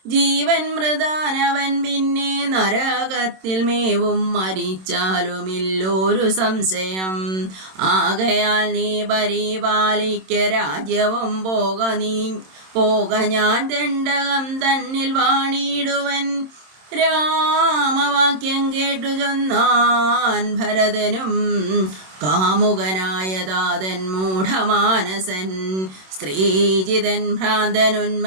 ജീവൻ മൃതാനവൻ പിന്നെ നരകത്തിൽ മേവും മരിച്ചാലുമില്ലൊരു സംശയം. ആകയാൽ നീ പരിപാലിക്ക രാജ്യവും പോക ഞാൻ ദണ്ഡകം തന്നിൽ വാണിടുവൻ. രാമവാക്യം കേട്ടു ചൊന്നാൻ ഭരതനും കാമുകനായ താതൻ മൂഢമാനസൻ. സ്ത്രീജിതൻ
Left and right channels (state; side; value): late; left; 27 ms